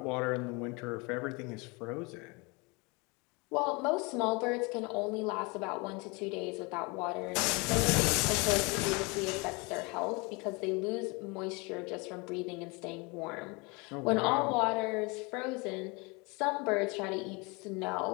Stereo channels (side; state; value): right; quieter; 28.4 dB